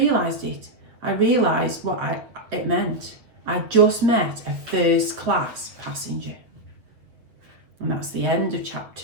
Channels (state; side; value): late; left; 8.2 ms